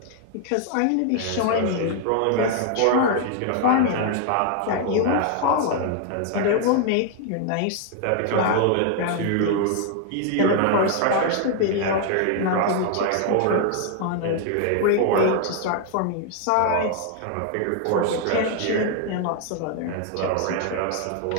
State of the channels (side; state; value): both; different; correlation 0.00